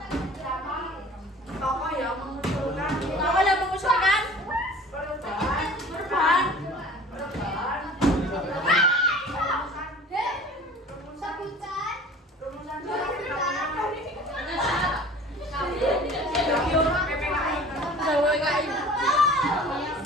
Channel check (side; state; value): both; normal; correlation 0.45